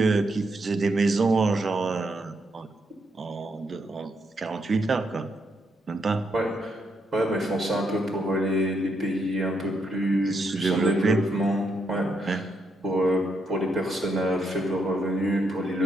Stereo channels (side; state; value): both; normal; correlation 0.78